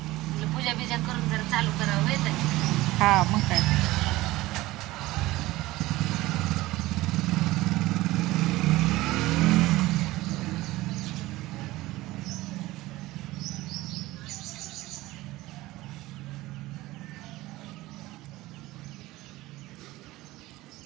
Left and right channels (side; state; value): left; quieter; 18.4 dB